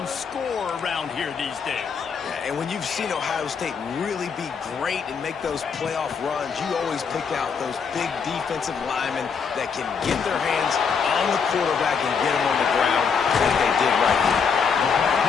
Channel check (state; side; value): quieter; right; 6.1 dB